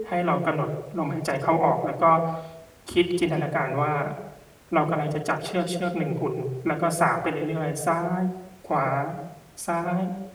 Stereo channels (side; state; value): both; identical; correlation 1.00